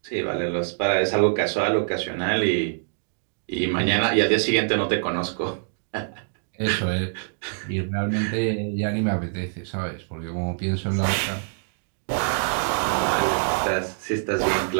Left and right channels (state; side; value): silent; left; digital silence